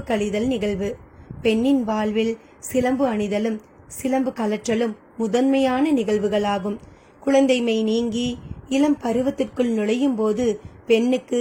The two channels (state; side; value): identical; both; correlation 1.00